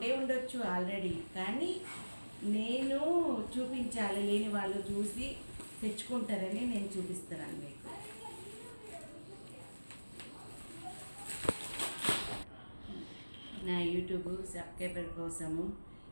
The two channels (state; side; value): inverted; both; correlation -1.00